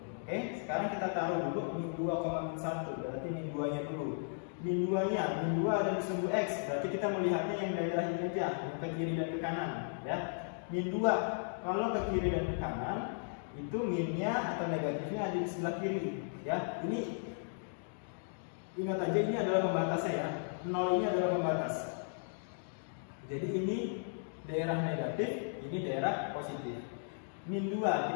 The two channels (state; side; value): silent; right; digital silence